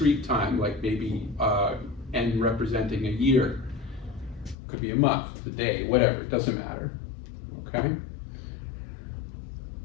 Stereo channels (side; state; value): right; drops out; at 4.5 s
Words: time, like maybe n representing a year. Could be a month, a day, whatever, it doesn't matter, okay?